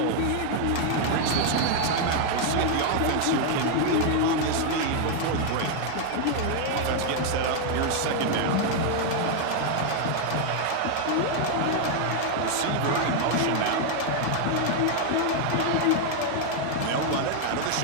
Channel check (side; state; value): both; different; correlation 0.00